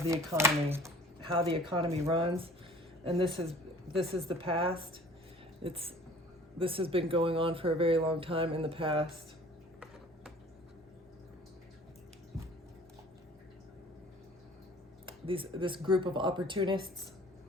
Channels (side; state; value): both; normal; correlation 0.50